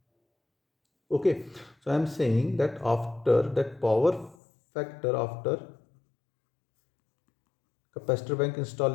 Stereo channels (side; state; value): right; drops out; at 4.4 s